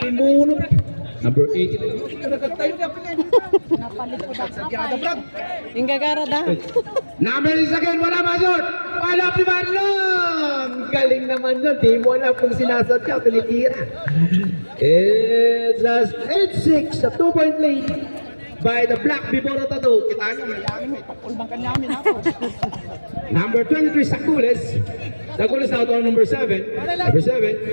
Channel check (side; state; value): both; inverted; correlation -1.00